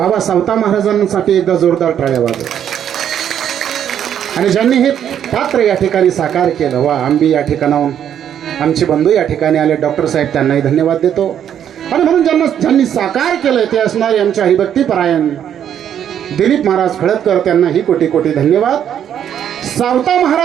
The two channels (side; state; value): left; quieter; 9.5 dB